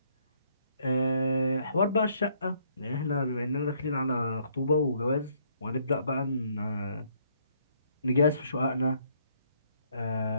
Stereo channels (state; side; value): inverted; both; correlation -0.68